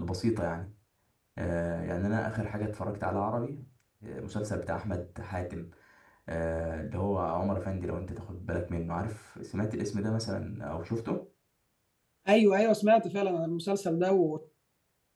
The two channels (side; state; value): both; identical; correlation 1.00